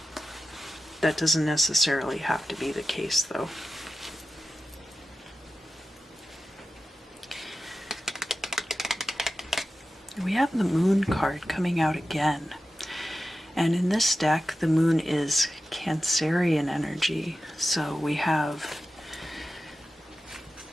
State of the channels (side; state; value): both; normal; correlation 0.93